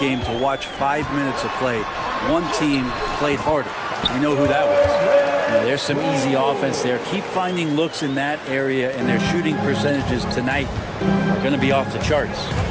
to watch 5 minutes of play, one team played harder. You know who that was. You know, there's some easy offense there. Keep finding looks in that area, and their shooting percentages tonight are going to be off the charts.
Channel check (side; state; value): both; identical; correlation 1.00